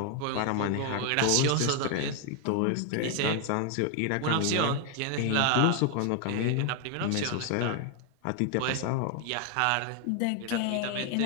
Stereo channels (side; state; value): both; different; correlation 0.01